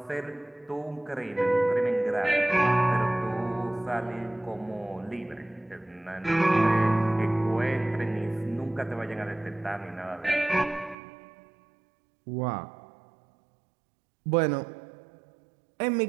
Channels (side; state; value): left; drops out; at 11.0 s